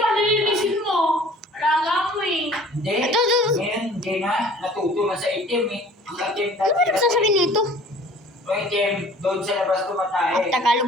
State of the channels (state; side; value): normal; both; correlation 0.50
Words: mo. Alaga mo eh. Hindi. Ito. Ngayon, hindi na. Natuto na sa itim eh. Ang itim Ano ba nagsasabi nito? Ang itim, doon sa labas tumatay.